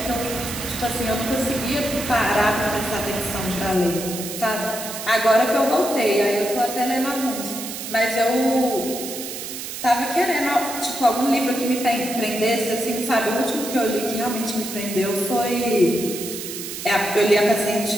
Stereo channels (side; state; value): right; noise; hiss, 8 dB below the sound